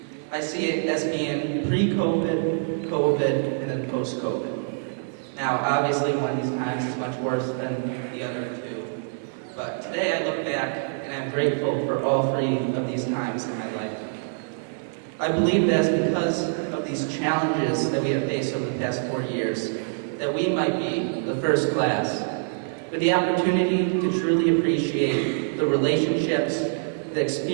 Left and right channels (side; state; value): left; silent; 55 dB below the other